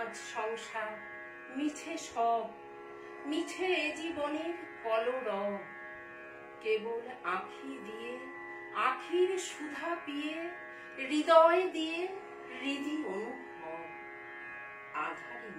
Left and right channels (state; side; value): identical; both; correlation 1.00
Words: সংসার মিছে সব, মিছে এ জীবনের কলরব, কেবল আঁখি দিয়ে আখির সুধা পিয়ে, হৃদয় দিয়ে হৃদি অনুভব, আধারে